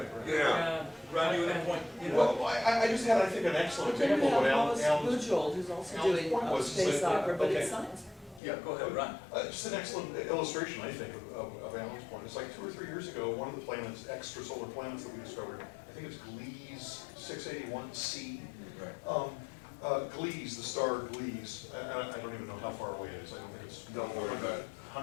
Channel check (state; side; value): drops out; right; at 8.4 s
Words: Yeah. Ron, you had a point? You know, Well, I just had, I think, an excellent But then example we of have what Hollis Alan's. Bujold, who's also Alan's doing point was, space is that, opera, but okay. it's science. Yeah, go ahead, Ron. Just an excellent illustration, I think, of Alan's point. It's like 2 or 3 years ago, one of the planets, extrasolar planets that we discovered, I think it's Gliese 681c. Gliese, the star Gliese, I don't even know how far away it is. I don't think it's Don't worry about it.